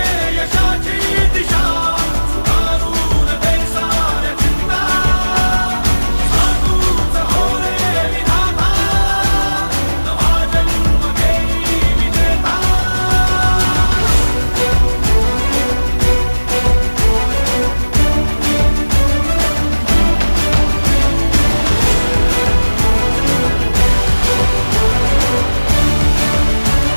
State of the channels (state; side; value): inverted; both; correlation -1.00